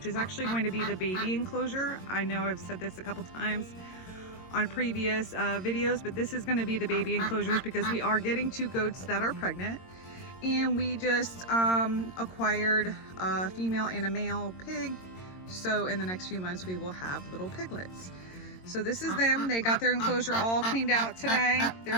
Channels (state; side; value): late; right; 22 ms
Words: is actually going to be the baby enclosure. I know I've said this a couple times on previous videos, but this is going to be the baby enclosures because we are getting two goats that are pregnant, and we just acquired a female and a male pig, so in the next few months we will have little piglets. So this is them. They got their enclosure all cleaned out today.